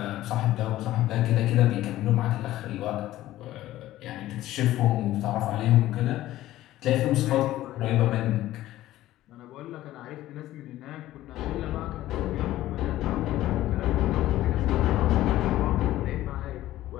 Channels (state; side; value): quieter; right; 14.9 dB